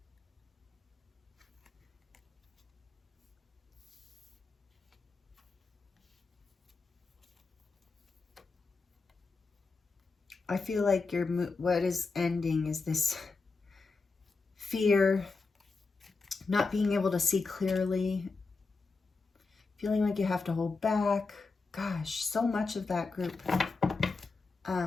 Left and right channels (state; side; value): quieter; right; 4.1 dB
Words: I feel like what is ending is this fear, not being able to see clearly, feeling like you have to hold back. Gosh, so much of that group